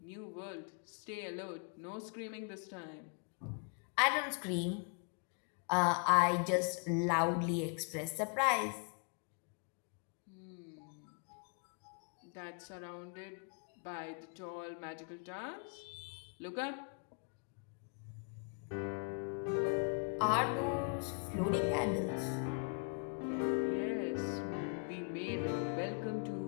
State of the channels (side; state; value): right; quieter; 38.7 dB